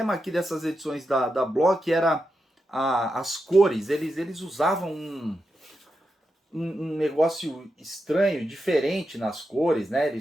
aqui dessas edições da Block era as cores. Eles usavam um negócio estranho, diferente nas cores, né?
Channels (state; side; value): normal; both; correlation 0.87